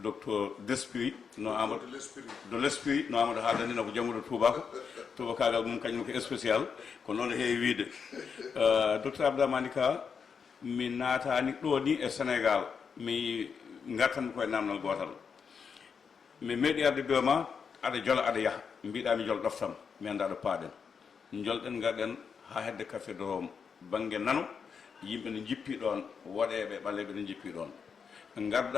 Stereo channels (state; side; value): quieter; right; 6.2 dB